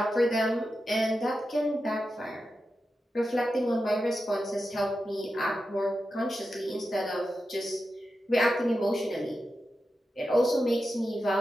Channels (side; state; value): both; normal; correlation 0.90